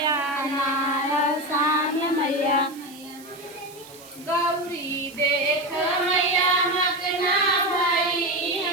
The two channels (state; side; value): noise; right; hiss, 21 dB below the sound